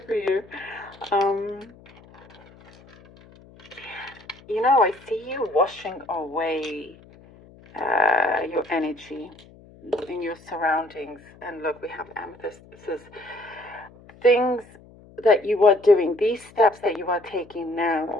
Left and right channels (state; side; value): noise; left; hum, 24 dB below the sound